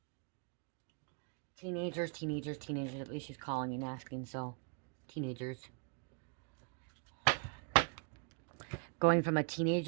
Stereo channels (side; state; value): left; quieter; 37.0 dB